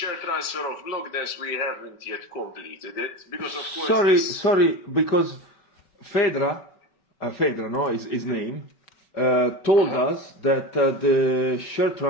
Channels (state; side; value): late; right; 5.2 ms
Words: transfer of Blockdance, we haven't yet completed it because of course. Sorry, because Fedra, no, is his name, told us that the share